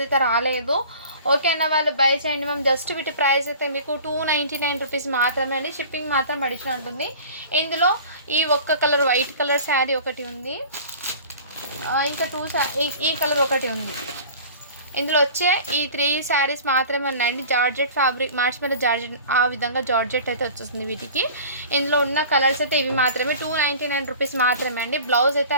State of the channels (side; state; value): both; inverted; correlation -0.42